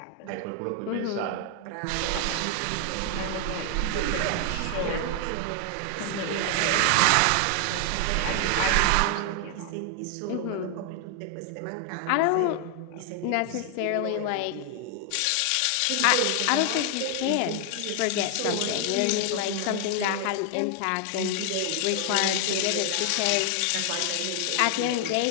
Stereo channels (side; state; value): both; different; correlation 0.00